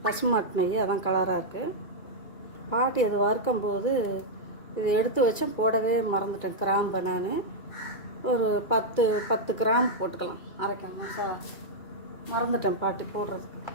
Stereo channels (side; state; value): right; late; 2.3 ms